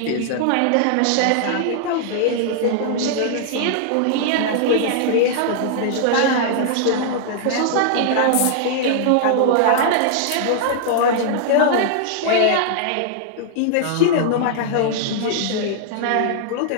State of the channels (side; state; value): both; different; correlation -0.01